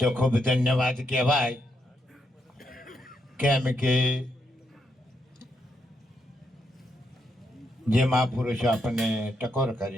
ખૂબ ધન્યવાદ કહેવાય. કેમ કે જે મહાપુરુષો આપણને ટકોર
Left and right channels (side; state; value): both; normal; correlation 0.80